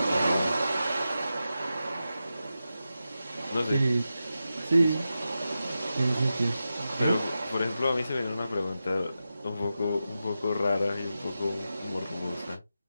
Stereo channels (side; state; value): both; inverted; correlation -0.91